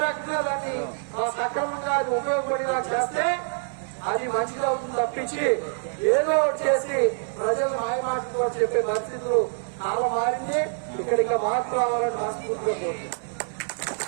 రకంగా దాన్ని సక్రమంగా అది ఉపయోగపడేలా చేస్తే అది మంచిగా అవుతుంది తప్పించి ఏదో ఒకటి చేసి ప్రజలు మాయమాటలు చెప్పే పరిస్థితులు చాలా మారింది. ఇక్కడ ఇంకా మార్పు రావాలని మనస్ఫూర్తిగా కోరుతున్నాను.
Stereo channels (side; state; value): left; silent; digital silence